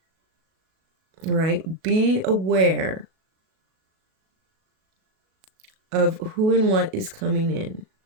right, be aware of who and what is coming in.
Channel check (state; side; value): late; left; 37 ms